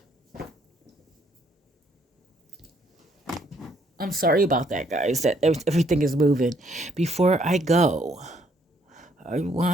I'm sorry about that, guys, that everything is moving. Before I go, I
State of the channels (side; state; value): both; normal; correlation 0.68